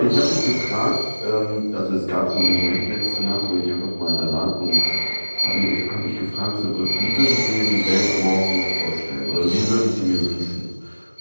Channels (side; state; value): both; inverted; correlation -1.00